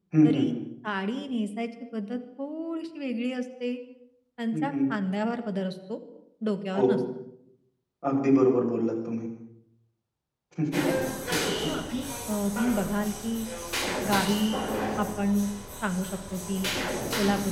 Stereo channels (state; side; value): identical; both; correlation 1.00